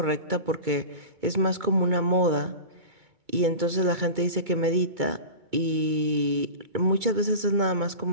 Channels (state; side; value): late; left; 2.2 ms